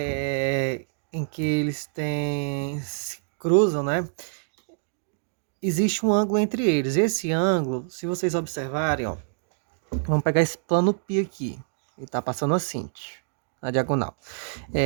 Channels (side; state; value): left; silent; digital silence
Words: em que eles se cruzam, né? Existe um ângulo entre eles. Esse ângulo, se vocês observarem, ó, vamos pegar esse plano π aqui. Ele está passando assim, na diagonal.